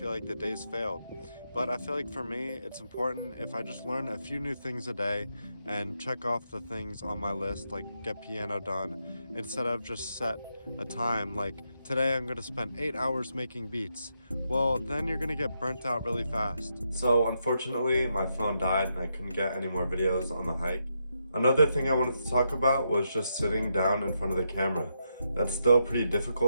like the day's failed. But I feel like for me, it's important if I just learn a few new things a day and check off the things on my list, like get piano done, instead of just set a time, like today I'm gonna spend 8 hours making beats. Well, then you're gonna get burnt out really fast. So unfortunately, my phone died and I couldn't get any more videos on the hike. Another thing I wanted to talk about was just sitting down in front of the camera. That's still pretty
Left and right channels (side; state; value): both; inverted; correlation -0.81